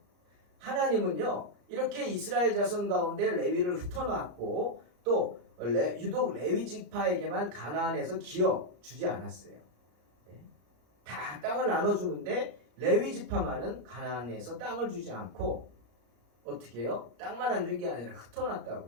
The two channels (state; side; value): late; left; 34 ms